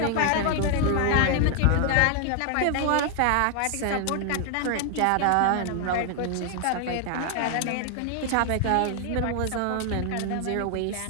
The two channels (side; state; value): both; different; correlation 0.00